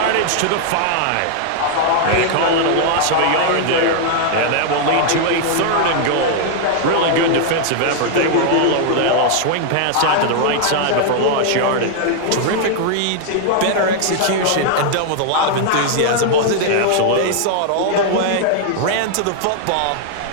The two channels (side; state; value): both; different; correlation -0.01